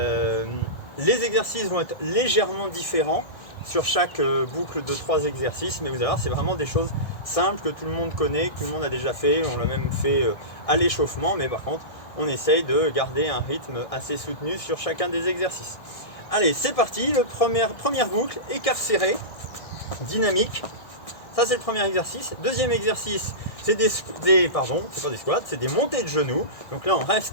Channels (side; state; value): right; late; 1.6 ms